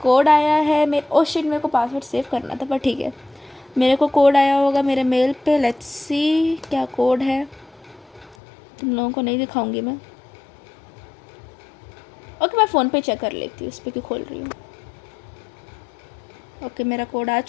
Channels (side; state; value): right; drops out; at 8.3 s